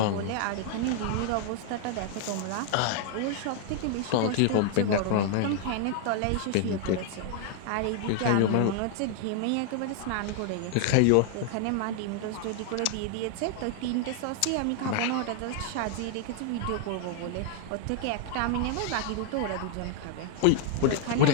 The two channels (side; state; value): both; different; correlation 0.00